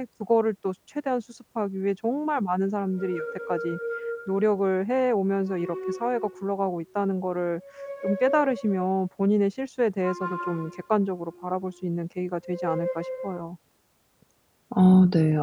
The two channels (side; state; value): both; identical; correlation 1.00